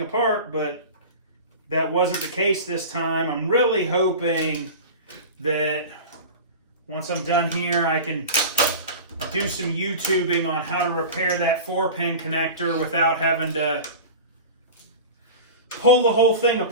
apart, but that wasn't the case this time. I'm really hoping that once I'm done here, I can do some YouTubing on how to repair that 4-pin connector without having to pull the whole thing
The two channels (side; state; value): both; inverted; correlation -0.31